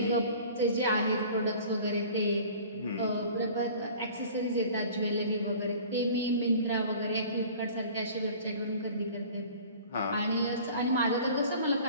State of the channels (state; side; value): inverted; both; correlation -0.45